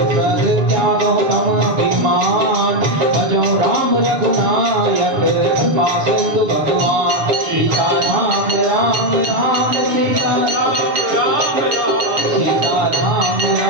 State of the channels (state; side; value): late; left; 6.9 ms